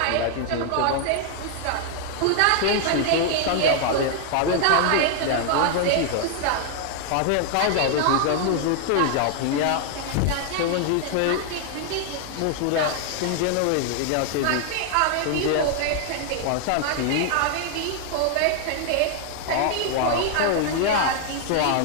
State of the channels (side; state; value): both; different; correlation 0.00